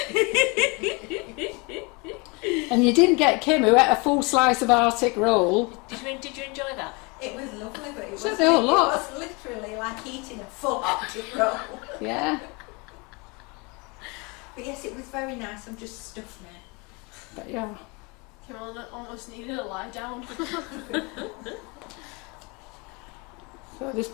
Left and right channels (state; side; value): quieter; right; 29.0 dB